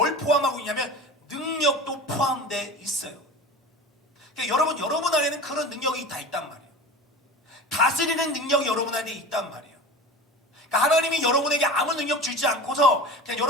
포함하고 있냐면 능력도 포함되어 있어요. 그러니까 여러분 안에는 그런 능력이 다 있단 말이에요. 다스리는 능력이 여러분 안에 있단 말이에요. 그러니까 하나님이 여러분에게 아무 능력 주지 않고서 그냥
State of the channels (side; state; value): both; normal; correlation 0.34